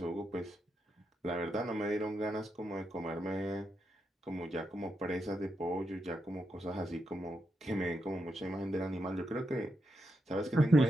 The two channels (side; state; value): both; normal; correlation 0.84